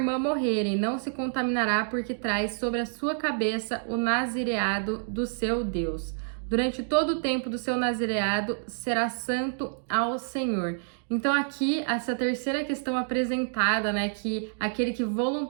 morrerem, não se contaminará, porque traz sobre a sua cabeça o nazireado do seu Deus. Durante todo o tempo do seu nazireado, será santo ao Senhor. Então aqui, essa terceira questão apresentada, né, que aquele que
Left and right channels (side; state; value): left; silent; digital silence